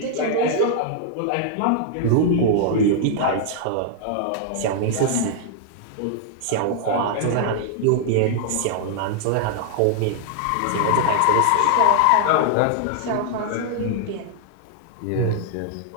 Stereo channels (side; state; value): both; different; correlation -0.01